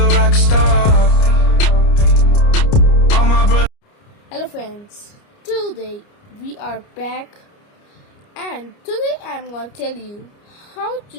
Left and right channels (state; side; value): late; right; 29 ms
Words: rock star. All my brothers. Hello friends, today we are back and today I am going to tell you how